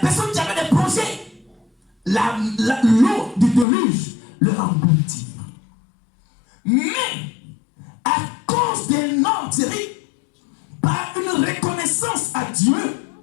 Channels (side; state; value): right; drops out; at 3.7 s